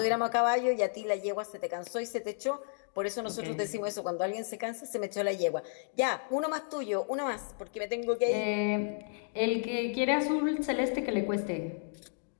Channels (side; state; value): right; silent; digital silence